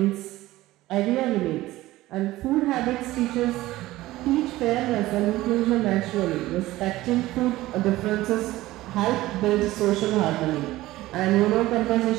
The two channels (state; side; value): quieter; left; 17.1 dB